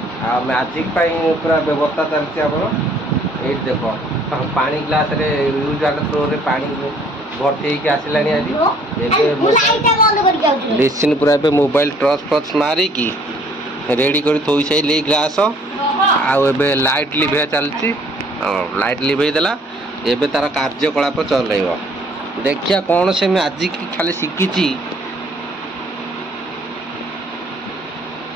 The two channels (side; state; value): both; normal; correlation 0.59